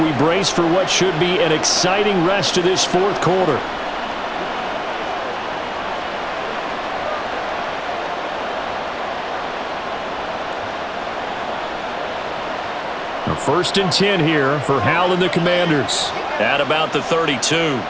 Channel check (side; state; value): both; identical; correlation 1.00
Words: brace for what should be an exciting rest of this 4th quarter. Now 1st and 10 here for Hal and the Commanders. At about the 32.